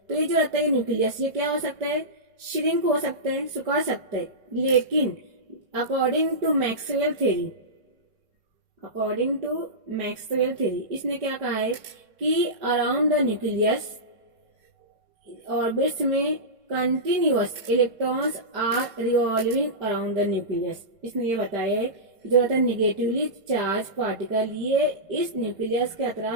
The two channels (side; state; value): left; late; 5.3 ms